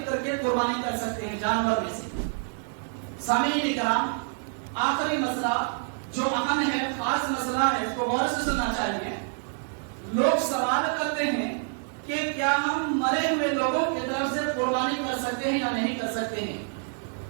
کر کے قربانی کر سکتے ہیں جانور میں سے۔ سامعین کرام، آخری مسئلہ جو اہم ہے، خاص مسئلہ ہے، اس کو غور سے سننا چاہیے۔ لوگ سوال کرتے ہیں کہ کیا ہم مرے ہوئے لوگوں کی طرف سے قربانی کر سکتے ہیں یا نہیں کر سکتے ہیں،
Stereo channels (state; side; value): silent; left; 60 dB below the other